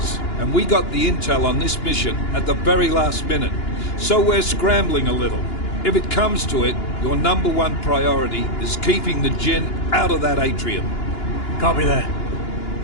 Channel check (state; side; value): late; right; 2.9 ms